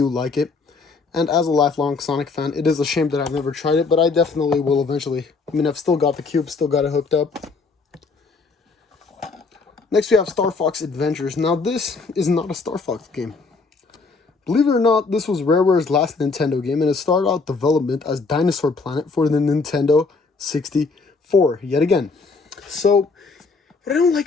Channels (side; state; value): right; quieter; 4.2 dB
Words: like it. And as a lifelong Sonic fan, it is a shame that I've never tried it, but I definitely will eventually. I mean, I've still got the cube, still got it hooked up. Next we have Star Fox Adventures. Now this is not a Star Fox game. Believe it or not, this was Rareware's last Nintendo game, and it started out development as Dinosaur Planet for the Nintendo 64, yet again. So, what I don't